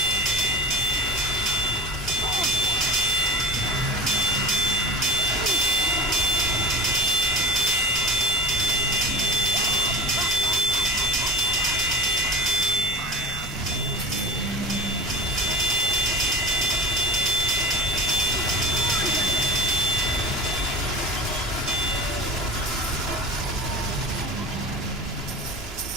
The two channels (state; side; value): normal; both; correlation 0.31